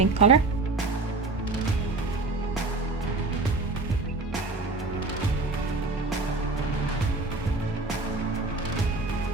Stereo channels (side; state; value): left; quieter; 3.4 dB